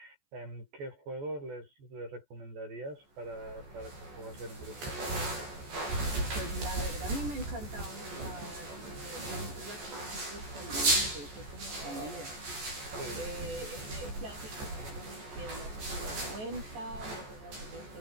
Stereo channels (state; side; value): late; left; 14 ms